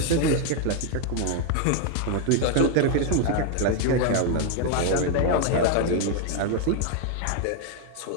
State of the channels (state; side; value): different; both; correlation 0.01